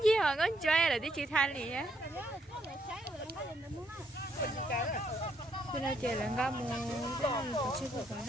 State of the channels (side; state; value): both; normal; correlation 0.73